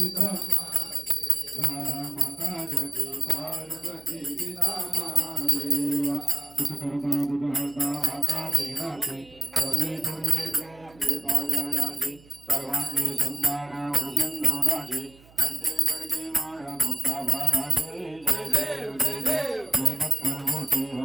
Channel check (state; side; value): noise; right; hum, 25 dB below the sound